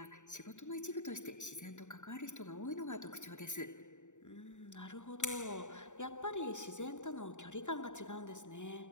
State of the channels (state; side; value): late; right; 0.85 ms